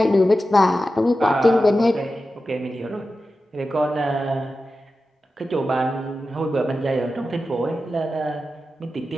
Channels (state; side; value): normal; both; correlation 0.92